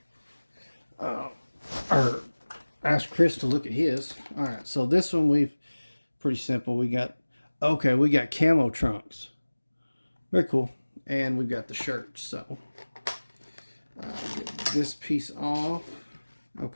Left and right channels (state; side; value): inverted; both; correlation -1.00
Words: Or ask Chris to look at his. Alright, so this one pretty simple. We got camo trunks. Very cool. And we've got the shirt. So, get this piece off.